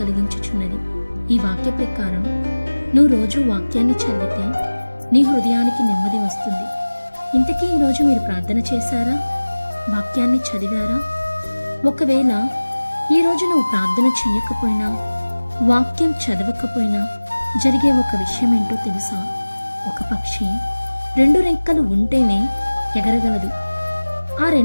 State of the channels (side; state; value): both; inverted; correlation -1.00